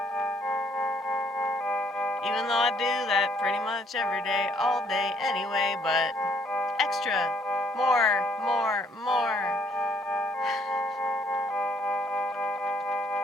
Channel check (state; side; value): normal; both; correlation 0.65